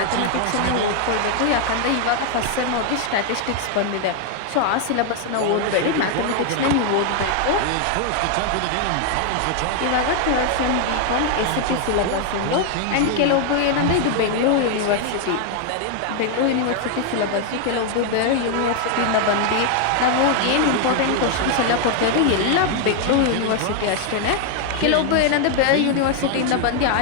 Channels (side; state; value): both; different; correlation 0.00